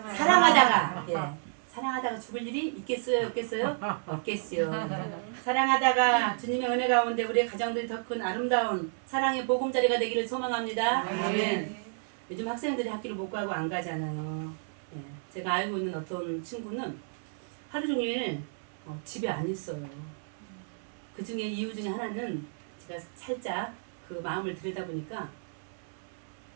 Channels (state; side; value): silent; left; 57 dB below the other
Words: 사랑하다가. 네. 사랑하다가 죽을 일이 있겠어요? 없겠어요? 없겠어요. 네. 사랑하다가 주님의 은혜 가운데 우리의 가정들이 더 큰 아름다운 사랑의 보금자리가 되기를 소망합니다. 아멘. 요즘 학생들이 학교를 못 가고 안 가잖아요. 네. 제가 알고 있는 어떤 친구는 하루 종일 집에 안 있어요. 그 중에 이유 중에 하나는 제가 살짝 그 마음을 들여다보니까